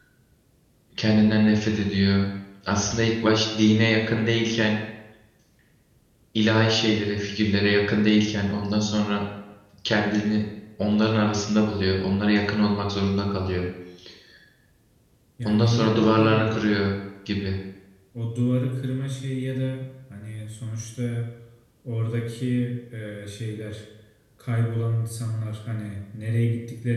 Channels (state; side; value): identical; both; correlation 1.00